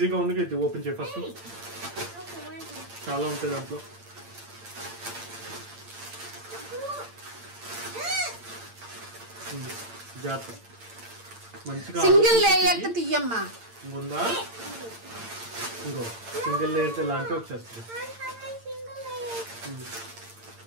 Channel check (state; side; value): late; left; 8.8 ms